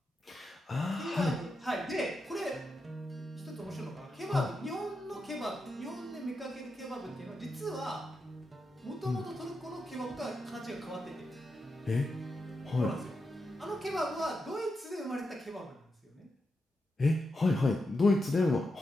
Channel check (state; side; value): normal; both; correlation 0.87